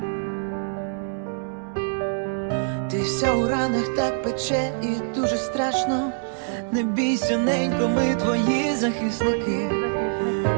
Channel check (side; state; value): left; silent; 62 dB below the other